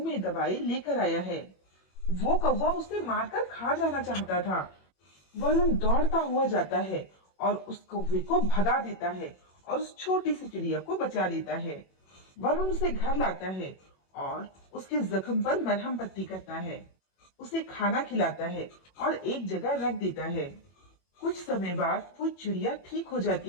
में दबाए लेकर आया है। वो कौवा उसे मारकर खा जाना चाहता था। वरुण दौड़ता हुआ जाता है और उस कौवे को भगा देता है और उस छोटी सी चिड़िया को बचा लेता है। वरुण उसे घर लाता है और उसके जख्म पर मरहम पट्टी करता है, उसे खाना खिलाता है और एक जगह रख देता है। कुछ समय बाद वो चिड़िया ठीक हो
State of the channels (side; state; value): right; late; 21 ms